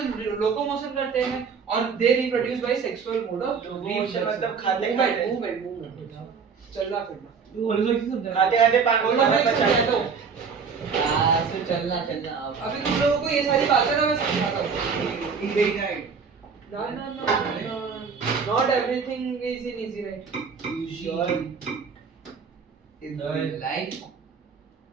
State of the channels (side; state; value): left; quieter; 5.8 dB